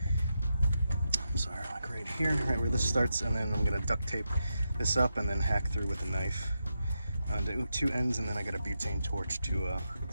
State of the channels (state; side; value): inverted; both; correlation -0.86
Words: I'm sorry, like right here, right where this starts, and then I'm gonna duct tape this up and then hack through with a knife onto two ends, and then I got a butane torch to